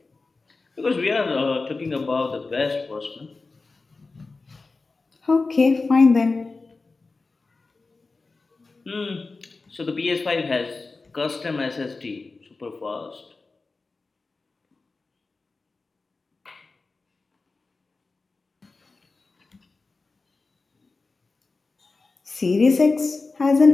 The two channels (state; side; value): quieter; right; 3.8 dB